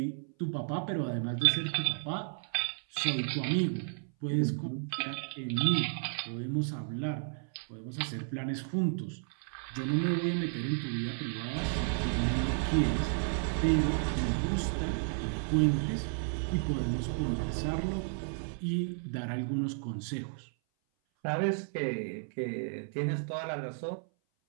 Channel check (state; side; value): silent; left; 56 dB below the other